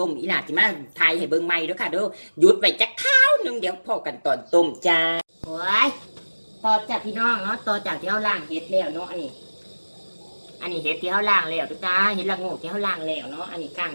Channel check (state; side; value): inverted; both; correlation -1.00